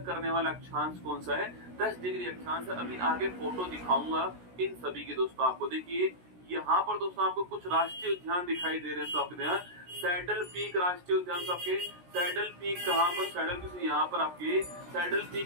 करने वाला अक्षांश कौन सा है, 10 डिग्री अक्षांश है। अभी आगे फोटो दिखाऊंगा इन सभी के दोस्तों आपको। देखिए यहाँ पर दोस्तों आपको कुछ राष्ट्रीय उद्यान दिखाई दे रहे हैं, तो आपके सैडल पीक राष्ट्रीय उद्यान, आपके सैडल पीक कहाँ पर, सैडल पीक यहाँ पर, आपके सैडल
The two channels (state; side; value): late; left; 16 ms